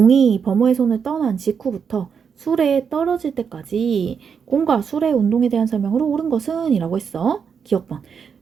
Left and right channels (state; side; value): quieter; left; 6.6 dB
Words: 범호의 손을 떠난 직후부터 수레에 떨어질 때까지 공과 수레의 운동에 대한 설명으로 옳은 것은 이라고 했어. 기억번.